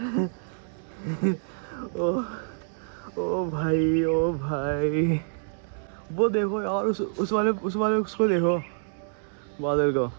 ओ ओ भाई, ओ भाई, वो देखो यार उस वाले उसको देखो, बादल को।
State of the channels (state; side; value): silent; left; digital silence